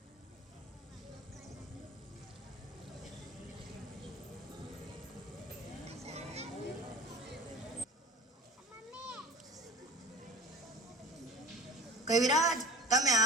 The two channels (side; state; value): both; normal; correlation 0.38